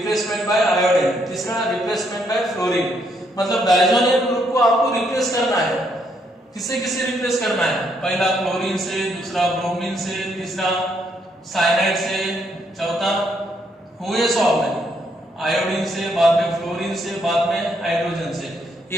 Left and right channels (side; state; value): both; normal; correlation 0.73